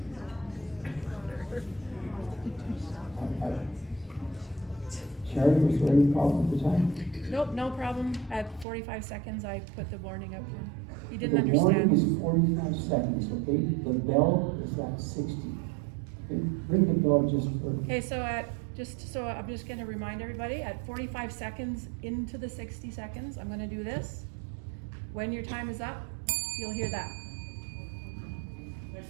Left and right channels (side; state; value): left; drops out; at 8.7 s